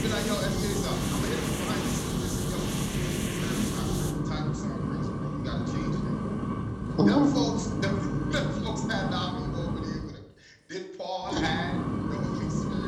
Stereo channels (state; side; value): identical; both; correlation 1.00